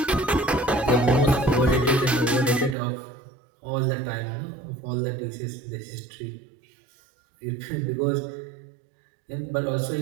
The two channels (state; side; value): drops out; left; at 2.8 s